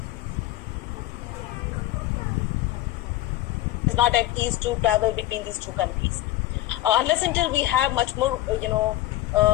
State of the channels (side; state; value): right; quieter; 16.0 dB